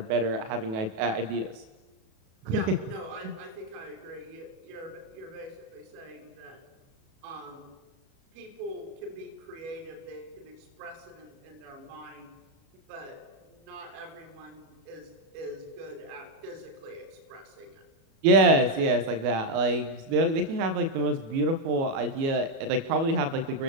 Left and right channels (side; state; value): left; late; 36 ms